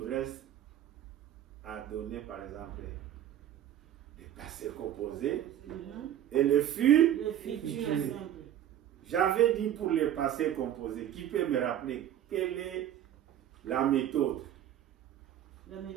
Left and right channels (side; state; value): left; quieter; 11.1 dB